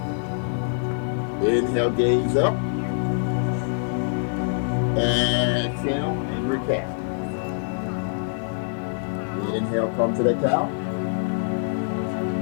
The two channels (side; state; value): right; silent; 62 dB below the other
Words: Inhale, gaze up. Exhale, angry cat. Inhale, come to that cow.